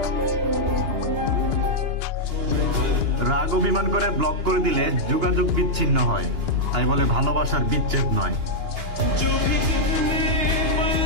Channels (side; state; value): left; late; 2.9 ms